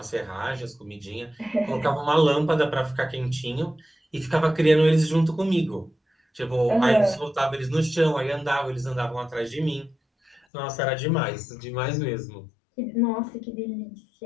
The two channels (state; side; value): drops out; right; at 10.4 s